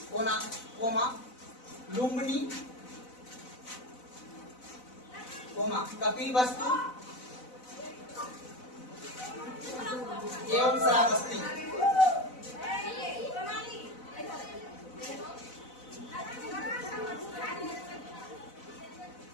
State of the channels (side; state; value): right; late; 4.0 ms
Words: कोना कोमा लुम्बिनी कोमा कपिलवस्तु एवं श्रावस्ती।